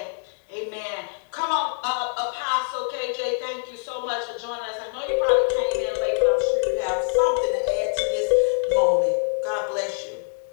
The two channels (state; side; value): silent; right; digital silence